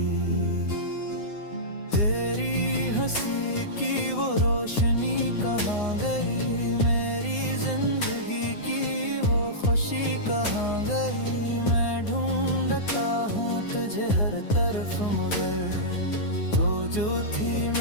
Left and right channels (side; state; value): right; late; 9.7 ms